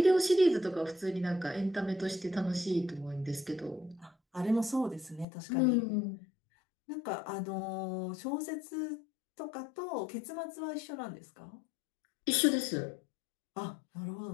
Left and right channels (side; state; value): right; drops out; at 5.2 s